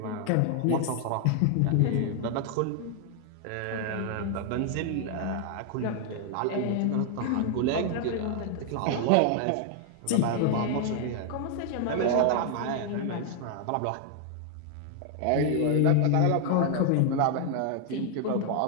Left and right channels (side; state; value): both; different; correlation 0.00